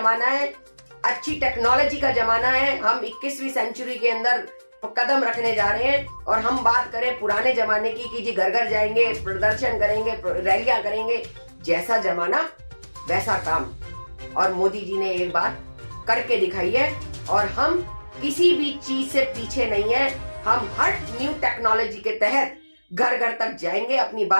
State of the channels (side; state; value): both; inverted; correlation -1.00